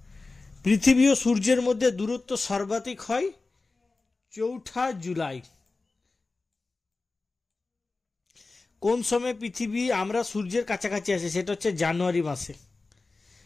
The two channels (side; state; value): right; quieter; 3.6 dB